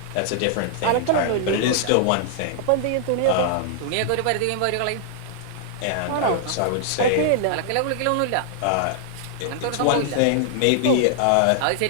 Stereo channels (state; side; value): different; both; correlation -0.01